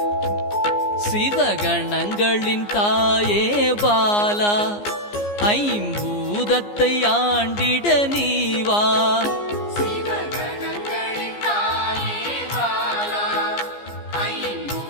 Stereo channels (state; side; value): late; right; 14 ms